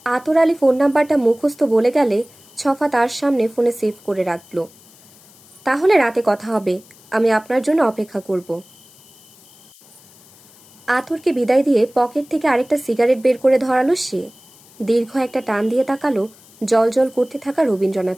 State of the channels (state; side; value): noise; left; hiss, 26 dB below the sound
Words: আতর আলী ফোন নাম্বারটা মুখস্থ বলে গেলে ছফা তার সামনে ফোনে সেভ করে রাখল। তাহলে রাতে কথা হবে, আমি আপনার জন্য অপেক্ষা করব। আতরকে বিদায় দিয়ে পকেট থেকে আরেকটা সিগারেট বের করে ধরালো সে। দীর্ঘ একটা টান দিয়ে তাকালো জল করতে থাকা